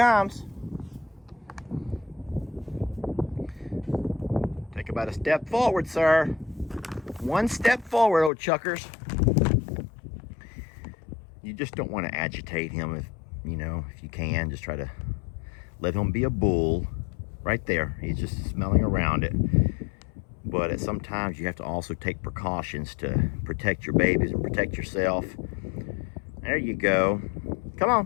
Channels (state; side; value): drops out; right; at 8.3 s